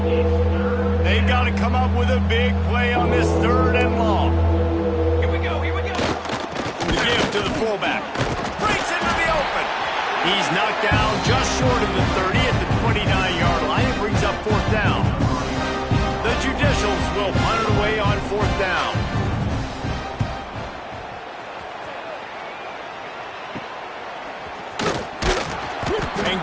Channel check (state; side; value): identical; both; correlation 1.00